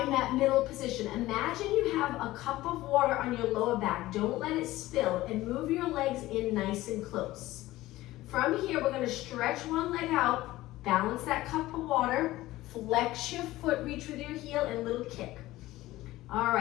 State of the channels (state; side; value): quieter; right; 17.0 dB